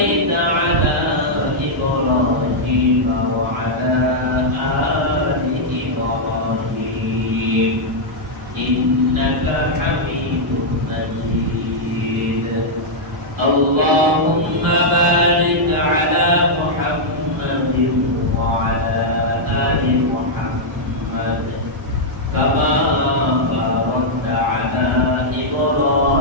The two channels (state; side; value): normal; both; correlation -0.06